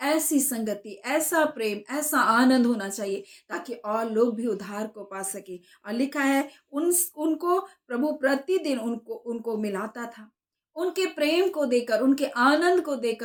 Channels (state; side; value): identical; both; correlation 1.00